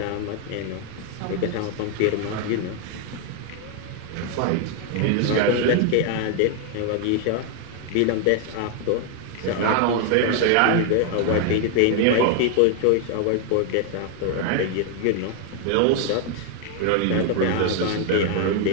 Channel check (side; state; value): both; different; correlation 0.00